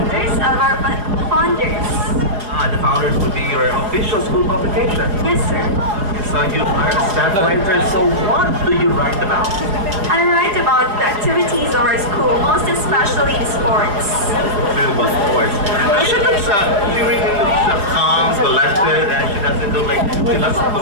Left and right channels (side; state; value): left; late; 4.9 ms